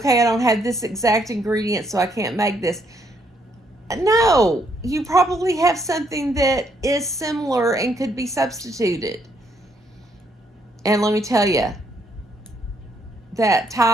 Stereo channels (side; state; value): both; normal; correlation 0.72